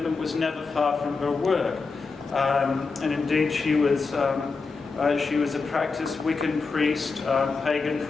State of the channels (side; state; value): right; quieter; 4.4 dB